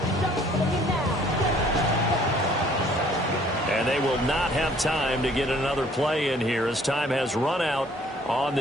And they will not have time to get another play in here as time has run out on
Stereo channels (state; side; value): normal; both; correlation 0.58